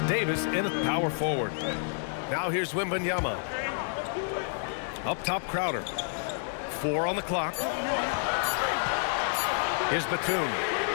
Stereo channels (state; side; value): silent; right; digital silence